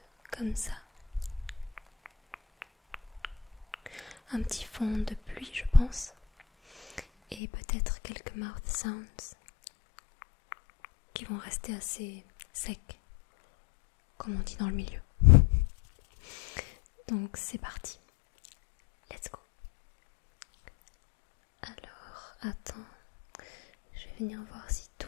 comme ça. Un petit fond de pluie, je pense. Et peut-être quelques mouth sounds qui vont rester assez secs, comme on dit dans le milieu. Donc c'est parti. Let's go. Alors, attends. Je vais venir voir si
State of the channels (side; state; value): right; drops out; at 7.4 s